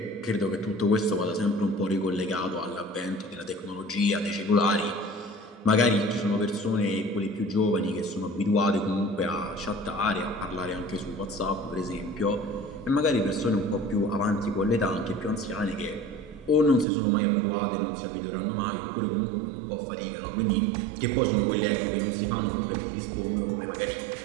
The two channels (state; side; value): drops out; left; at 16.9 s